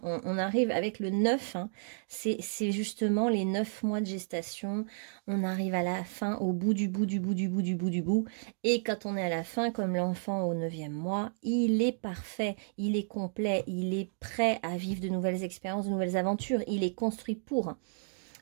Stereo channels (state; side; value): silent; left; digital silence